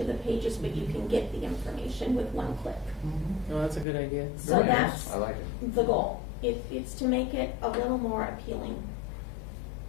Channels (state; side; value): drops out; right; at 3.9 s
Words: the pages, but you can get the information with one click. Oh, that's a good idea. So Very nice. that's I like it. the goal. It's to make it a little more appealing